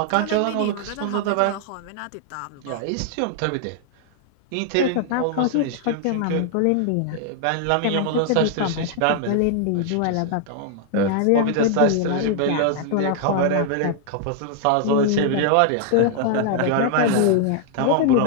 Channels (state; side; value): different; both; correlation 0.00